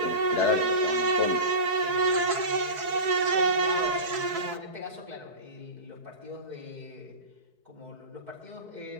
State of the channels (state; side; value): late; left; 4.6 ms